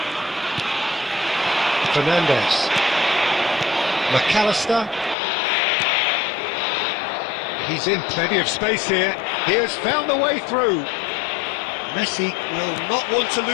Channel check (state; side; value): drops out; right; at 5.2 s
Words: Fernandez. McAllister. He's in plenty of space here. He has found a way through. Messi will not want to